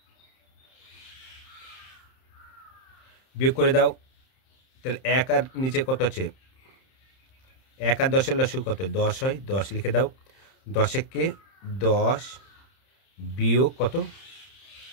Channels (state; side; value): late; right; 31 ms